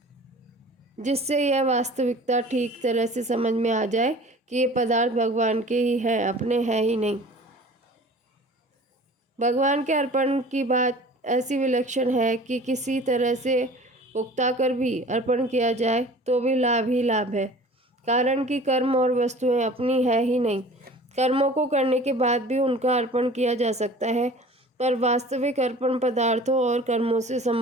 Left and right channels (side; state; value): both; normal; correlation 0.44